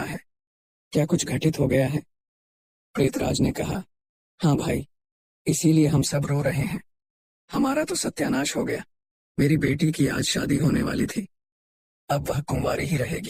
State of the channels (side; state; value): both; identical; correlation 1.00